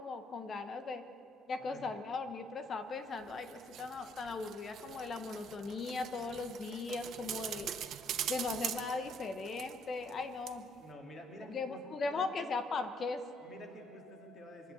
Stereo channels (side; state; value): both; normal; correlation 0.68